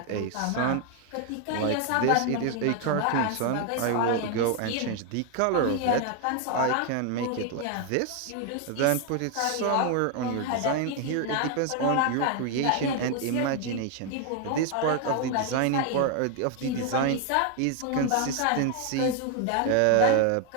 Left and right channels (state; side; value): different; both; correlation 0.01